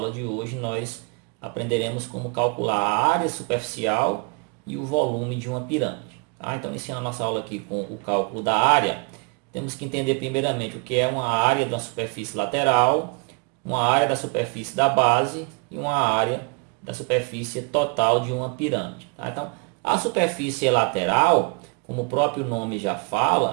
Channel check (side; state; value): left; quieter; 33.1 dB